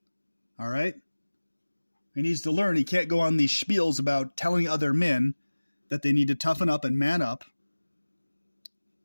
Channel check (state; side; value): inverted; both; correlation -1.00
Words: All right? He needs to learn he can't go on these spiels about telling other men that they need to toughen up and man up